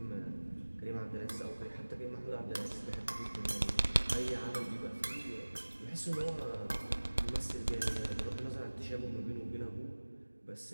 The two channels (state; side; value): inverted; both; correlation -1.00